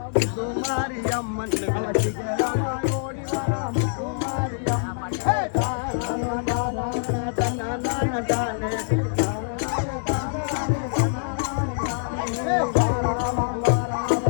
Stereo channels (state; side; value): silent; right; digital silence